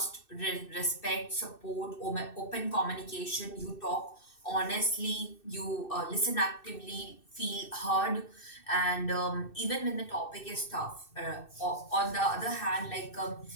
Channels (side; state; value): right; late; 2.6 ms